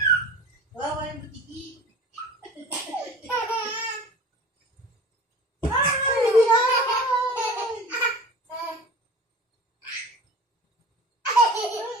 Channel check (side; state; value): both; normal; correlation 0.39